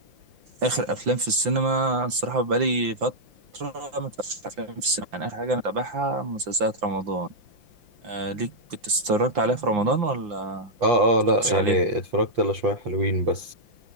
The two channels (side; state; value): left; late; 5.8 ms